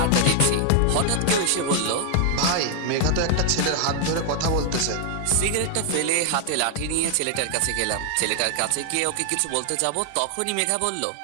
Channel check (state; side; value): different; both; correlation 0.00